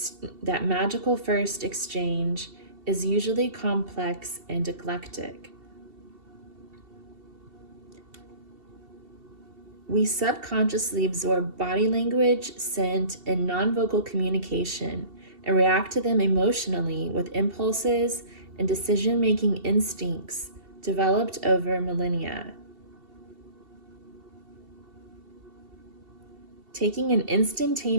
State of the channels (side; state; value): left; late; 2.7 ms